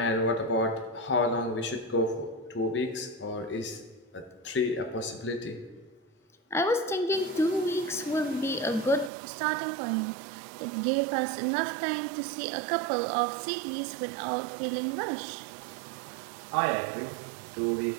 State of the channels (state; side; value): drops out; left; at 9.1 s